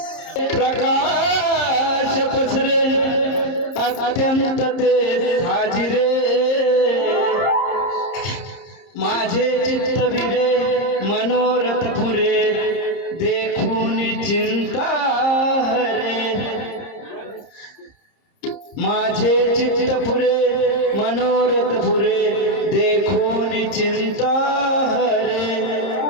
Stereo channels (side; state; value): right; late; 30 ms